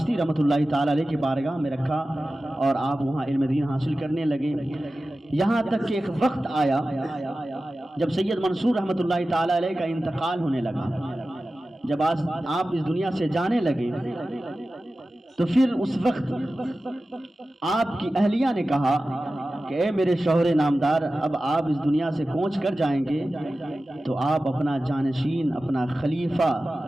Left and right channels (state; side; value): normal; both; correlation 0.95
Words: رحمۃ اللہ تعالی علیہ کی بارگاہ میں رکھا، اور آپ وہاں علم دین حاصل کرنے لگے، یہاں تک کہ ایک وقت آیا جب سید منصور رحمۃ اللہ تعالی علیہ کا انتقال ہونے لگا۔ جب آپ اس دنیا سے جانے لگے تو پھر اس وقت آپ کی اہلیہ نے کہا کہ اے میرے شوہر نامدار، اب آپ اس دنیا سے کوچ کر جائیں گے تو آپ اپنا جانشین، اپنا خلیفہ